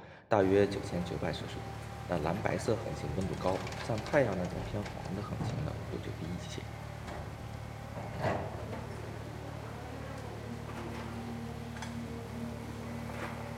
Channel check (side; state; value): both; identical; correlation 1.00